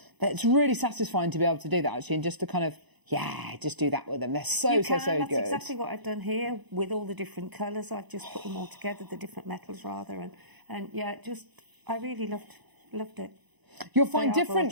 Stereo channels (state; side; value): late; left; 1.0 ms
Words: It's really satisfying to be able to do that, actually, and just to kind of. Yeah, just do that with them. They're so good. That's exactly what I've done here with all the different colours. I've just put them all together, the different metals rather, and I really loved it. You'll find